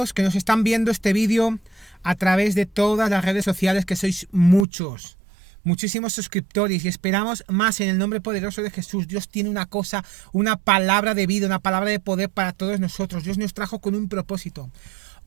que nos están viendo este vídeo a través de todas las redes sociales, que sois muchísimos suscriptores, y esperamos más en el nombre poderoso de Jesús. Dios tiene una cosa, una palabra de vida, una palabra de poder para todos nosotros. Dios nos trajo con un propósito.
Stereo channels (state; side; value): drops out; left; at 4.7 s